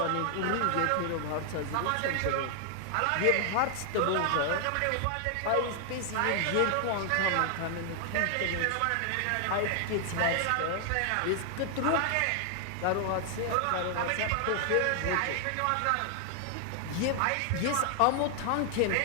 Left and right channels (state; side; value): different; both; correlation 0.00